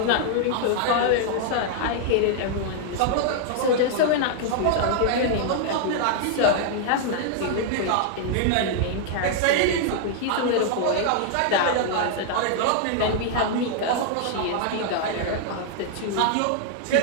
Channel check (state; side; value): different; both; correlation -0.01